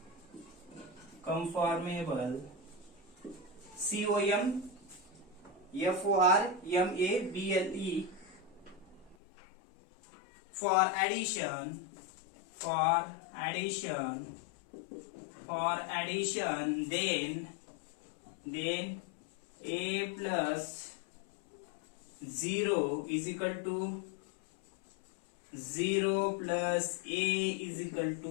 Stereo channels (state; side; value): drops out; right; at 9.2 s